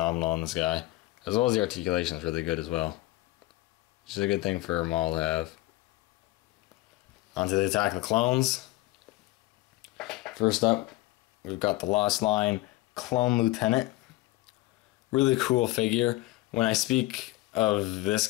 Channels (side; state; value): right; quieter; 18.7 dB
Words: on this guy. As well as the articulation is really good as well. Which is a good thing for Maul to have. On to the Attack of the Clones. First up, we've got the Lost Line Clone Lieutenant. Really cool figure. When I speak of this